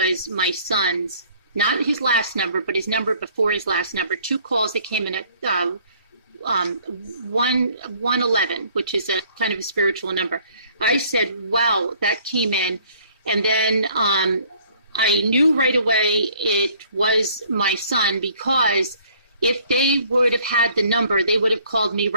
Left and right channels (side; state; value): both; inverted; correlation -0.58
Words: my son's, not his last number, but his number before his last number. 2 calls that came in at 111, which is a kind of a spiritual number. I said, wow, that came in. And then I knew right away it was my son, because if they would have had the number, they would have called me